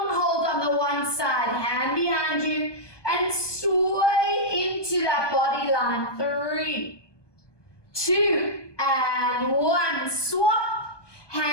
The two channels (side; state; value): right; late; 1.2 ms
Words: hold on the one side, hand behind you, and sway into that body line. 3, 2, and 1. Swap.